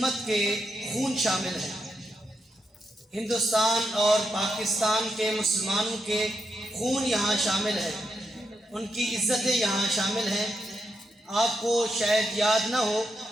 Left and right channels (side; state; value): both; normal; correlation 0.83